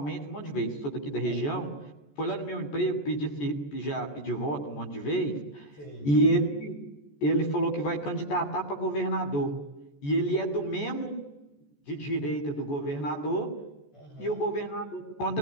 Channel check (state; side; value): late; right; 14 ms